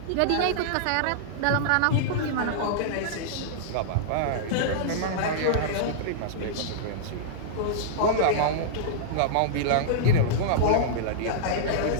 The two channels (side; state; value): both; different; correlation -0.02